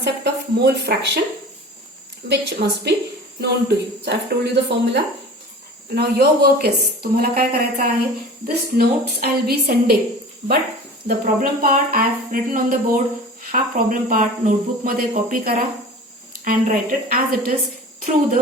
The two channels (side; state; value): both; normal; correlation 0.39